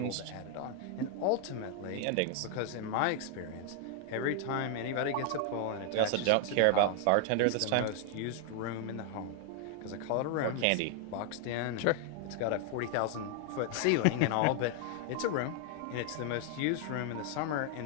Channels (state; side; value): different; both; correlation 0.00